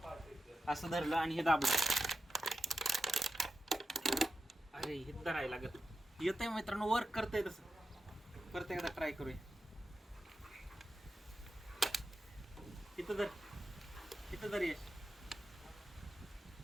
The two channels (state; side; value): normal; both; correlation 0.91